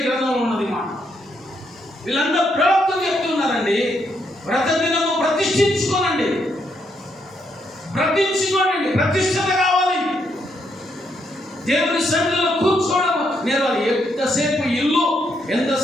గ్రంథంలో ఉన్నది మాట. వీళ్ళందరూ ప్రవక్తలు చెప్తున్నారండి, వ్రత దినము ప్రతిష్ఠించుకోనండి, ప్రతిష్ఠించుకోనండి, ప్రతిష్ఠత కావాలి. దేవుని సన్నిధిలో కూర్చోవడం నేర్వాలి. ఎంతసేపు ఇల్లు,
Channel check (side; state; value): both; normal; correlation 0.76